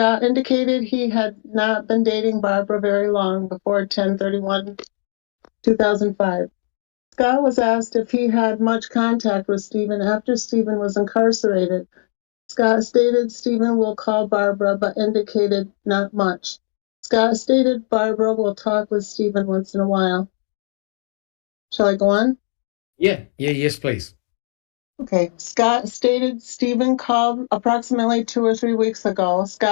indicated he had not been dating Barbara very long before 10/31/2005. Scott was asked if he had much contact with Stephen after Stephen was incarcerated. Scott stated Stephen will call Barbara, but indicated not much. Scott stated Barbara will talk with Stephen once in a while. Shall I go on? Yes, please. Okay. Scott stated Stephen called approximately 2 or 3 weeks ago.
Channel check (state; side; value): silent; right; digital silence